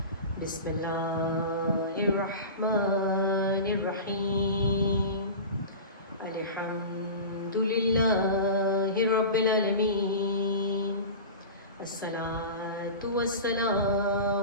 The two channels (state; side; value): inverted; both; correlation -0.31